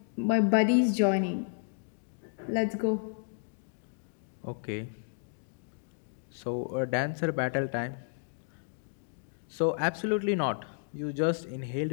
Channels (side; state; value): right; silent; digital silence